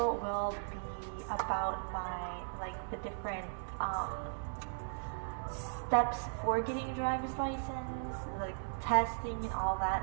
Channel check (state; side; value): silent; left; 53 dB below the other